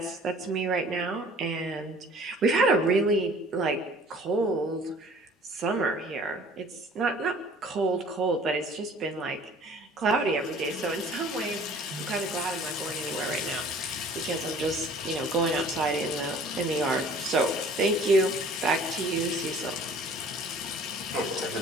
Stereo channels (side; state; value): both; normal; correlation 0.50